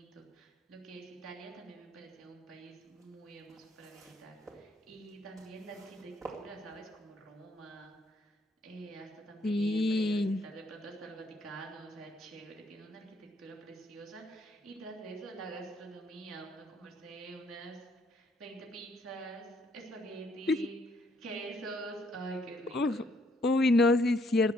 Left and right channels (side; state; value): both; normal; correlation 0.69